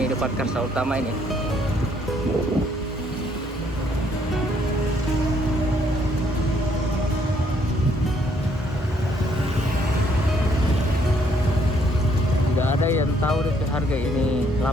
Depan Karsa Utama ini. Tidak ada yang tahu deh harga ini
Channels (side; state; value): both; normal; correlation 0.68